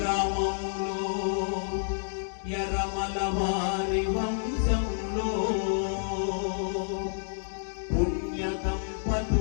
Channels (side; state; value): right; silent; digital silence